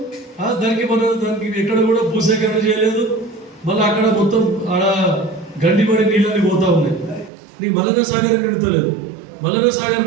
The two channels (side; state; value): left; drops out; at 7.3 s